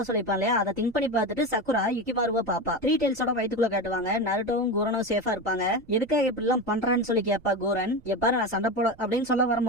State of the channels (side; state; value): right; noise; rumble, 26 dB below the sound